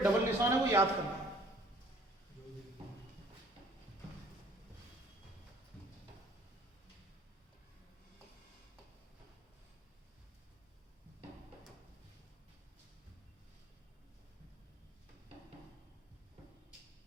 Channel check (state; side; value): normal; both; correlation 0.56